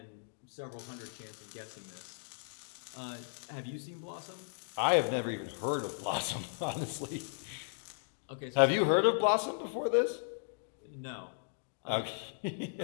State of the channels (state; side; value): silent; right; digital silence